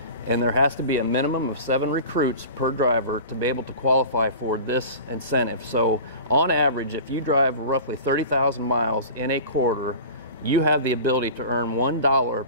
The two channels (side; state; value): both; inverted; correlation -0.36